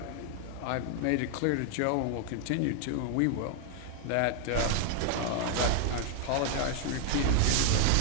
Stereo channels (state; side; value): different; both; correlation 0.00